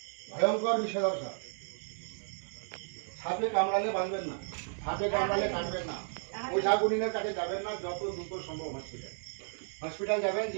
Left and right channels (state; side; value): silent; left; digital silence